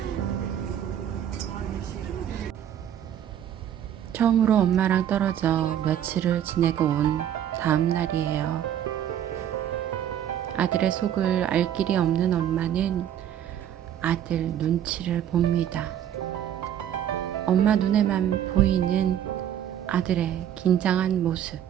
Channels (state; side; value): quieter; left; 10.3 dB